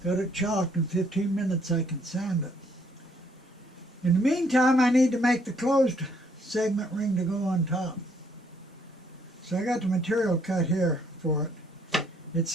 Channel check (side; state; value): both; normal; correlation 0.67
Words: Got it chalked. In 15 minutes I can sand it. In the meantime, I need to make the closed segment ring to go on top. So I got the material cut here for it. It's